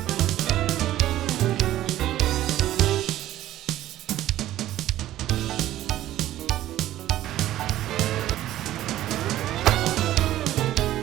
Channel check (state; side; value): quieter; left; 13.8 dB